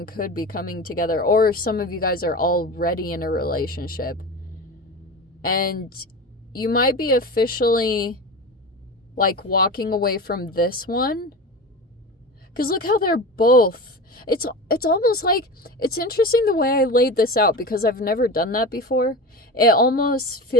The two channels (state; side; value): normal; both; correlation 0.28